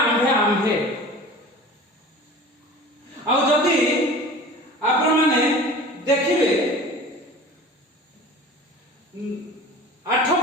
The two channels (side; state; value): both; normal; correlation 0.40